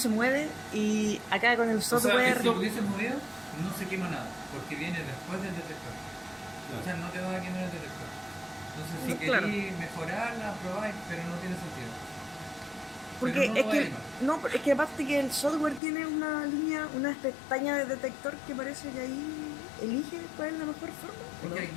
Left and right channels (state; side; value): drops out; right; at 15.8 s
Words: mueve y acá con el sea, software. Si lo hubieses movido, no se quema nada, porque viene después del detector. O sea, no te va a quemar el detector. Entonces, si Claro. queréis mejorarla, probáis, pero no tiene sentido. Porque Pero no es lo que vaya a quemar. no, es que aparte que el software tiene una línea, una pestaña de detector que parece que ahí elige cuál es la mejor forma. ¿o no? Porque